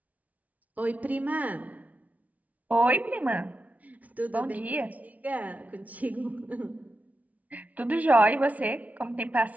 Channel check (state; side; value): late; left; 0.071 ms